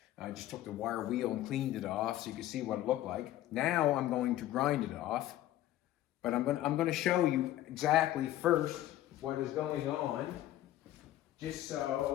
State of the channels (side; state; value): right; quieter; 14.0 dB